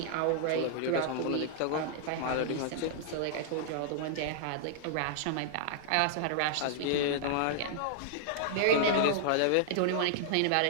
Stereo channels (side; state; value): both; different; correlation -0.01